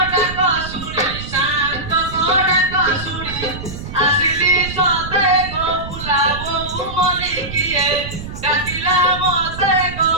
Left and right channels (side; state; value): right; noise; rumble, 10 dB below the sound